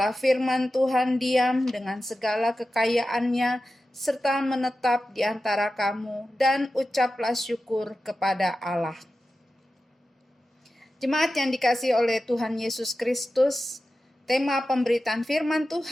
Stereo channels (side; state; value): both; normal; correlation 0.93